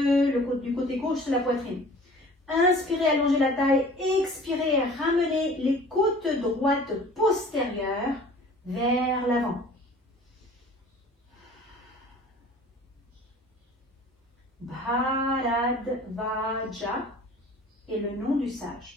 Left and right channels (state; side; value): normal; both; correlation 0.47